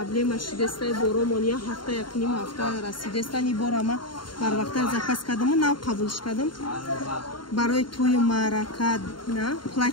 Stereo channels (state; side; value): late; right; 0.72 ms